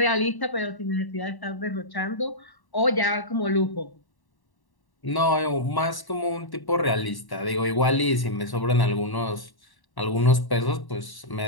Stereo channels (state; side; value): late; right; 1.1 ms